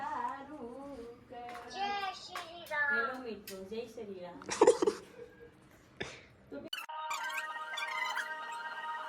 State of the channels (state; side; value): identical; both; correlation 1.00